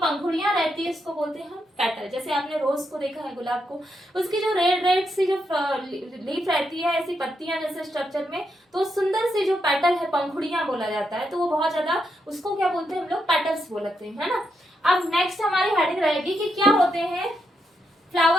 रहती है इसको बोलते हैं हम पेटल। जैसे आपने रोज को देखा है, गुलाब को, उसकी जो रेड रेड सी जो लीफ रहती है, ऐसी पत्तियां जैसे स्ट्रक्चर में, तो सुंदर सी जो पेटल है, पंखुड़ियां बोला जाता है, तो वो बहुत ज्यादा, उसको क्या बोलते हैं हम लोग पेटल्स बोलते हैं, है ना। अब नेक्स्ट हमारी हेडिंग रहेगी कि क्या होते हैं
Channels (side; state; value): both; normal; correlation 0.81